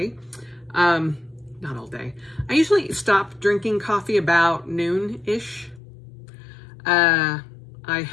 Not all day. I usually stop drinking coffee about noon-ish. I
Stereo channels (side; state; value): right; drops out; at 5.8 s